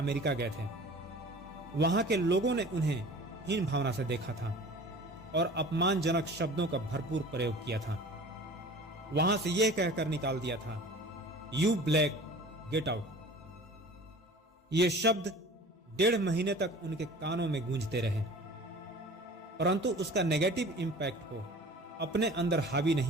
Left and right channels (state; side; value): normal; both; correlation 0.42